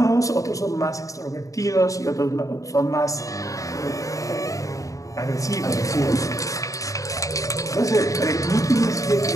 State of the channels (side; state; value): right; late; 0.16 ms